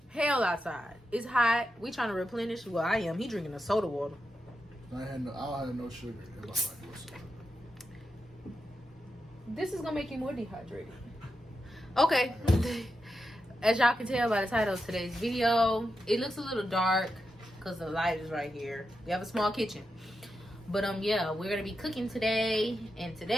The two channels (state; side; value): normal; both; correlation 0.88